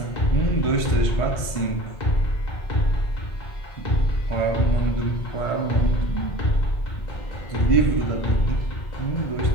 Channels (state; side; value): late; right; 1.5 ms